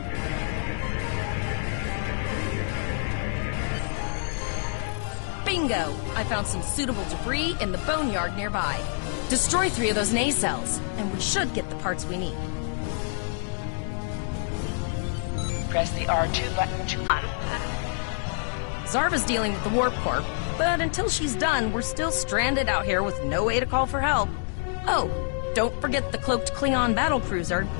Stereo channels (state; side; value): silent; right; 60 dB below the other